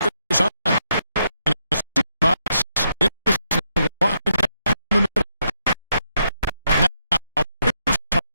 Chris on. And it's 2 box. Anderson walking down the middle. Now, here's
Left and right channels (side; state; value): both; inverted; correlation -0.80